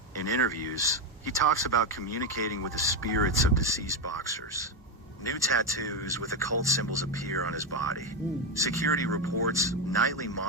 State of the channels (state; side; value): normal; both; correlation 0.08